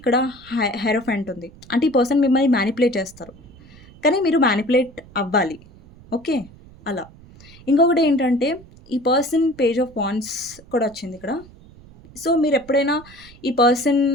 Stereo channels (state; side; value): noise; right; rumble, 23 dB below the sound